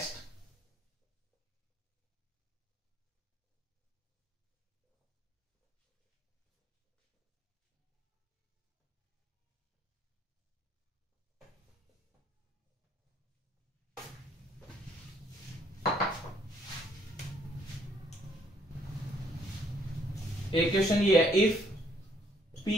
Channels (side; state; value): both; normal; correlation 0.67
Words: एक क्वेश्चन ये है, if p